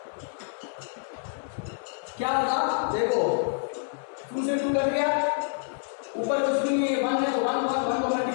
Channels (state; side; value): silent; right; digital silence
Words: क्या होगा देखो, 2 से 2 कट गया, ऊपर कुछ भी नहीं है, 1 है तो 1 को